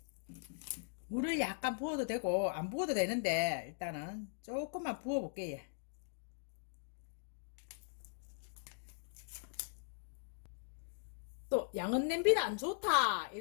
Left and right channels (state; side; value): silent; right; digital silence